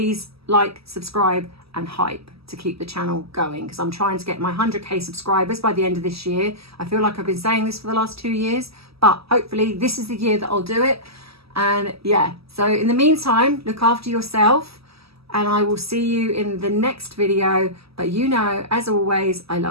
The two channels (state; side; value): late; left; 0.76 ms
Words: like, subscribe, and hype to keep the channel going, because I'm trying to get my 100k subscribers by the end of this year. I feel like I've been saying this for the last 2 years, but hopefully this is the year that I'll do it. And yeah, so in the meantime, look after yourself, and I will see you in the next video. But you know, as always, I